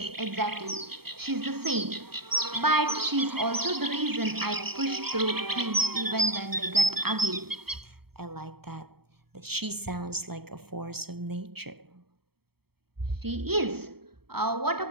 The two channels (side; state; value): left; late; 0.96 ms